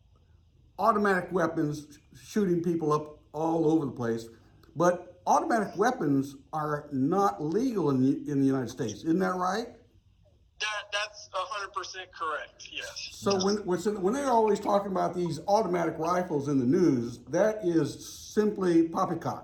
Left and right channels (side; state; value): both; identical; correlation 1.00